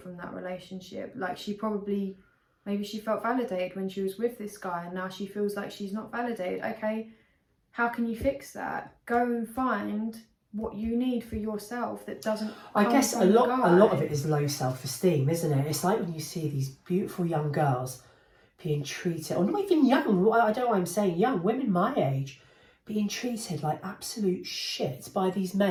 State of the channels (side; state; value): both; identical; correlation 1.00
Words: from that relationship. Like, she probably Maybe she felt validated when she was with this guy and now she feels like she's not validated. Okay, how can you fix that? Go and find what you need for yourself that doesn't I guess from a the lot of guy. it is low self-esteem, isn't it? It's like when you see these beautiful young girls being treated, or not even young, I don't know why I'm saying young, women my age, being treated like absolute shit by these